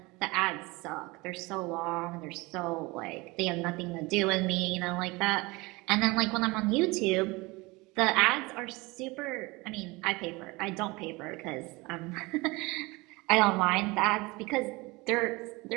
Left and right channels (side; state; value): left; quieter; 23.7 dB